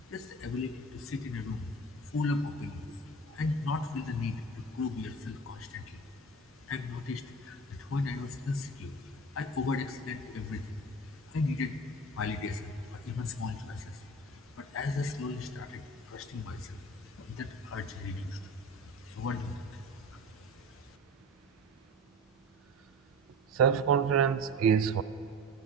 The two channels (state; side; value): normal; both; correlation 0.35